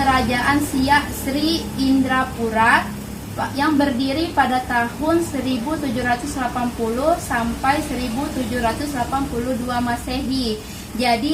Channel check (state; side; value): identical; both; correlation 1.00